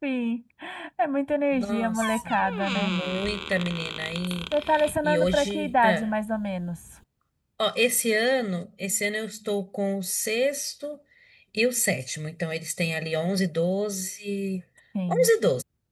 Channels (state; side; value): identical; both; correlation 1.00